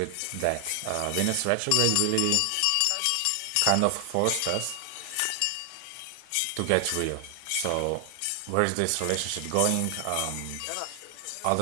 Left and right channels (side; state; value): both; different; correlation 0.00